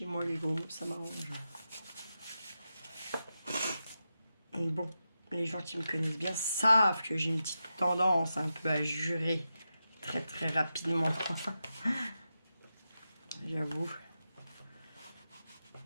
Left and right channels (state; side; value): inverted; both; correlation -0.90